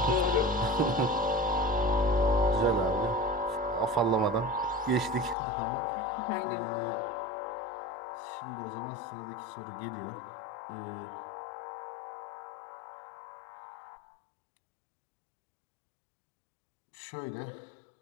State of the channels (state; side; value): drops out; right; at 5.4 s